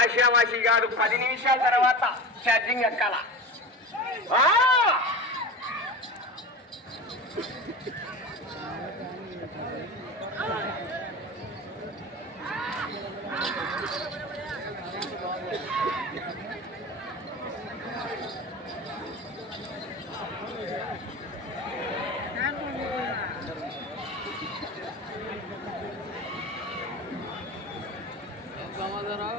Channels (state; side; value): normal; both; correlation 0.29